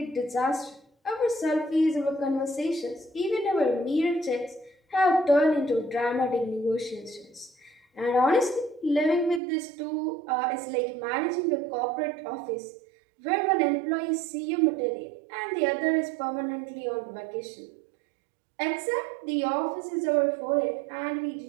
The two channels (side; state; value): left; drops out; at 9.4 s